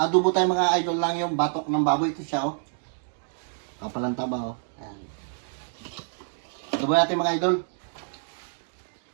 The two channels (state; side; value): silent; left; digital silence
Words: tayo mga idol lang yung batok ng baboy. Ito siya oh. Kapalang taba oh. Ayan. Adobo natin mga idol.